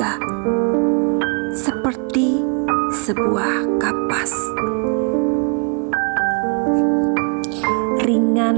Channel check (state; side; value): quieter; left; 38.9 dB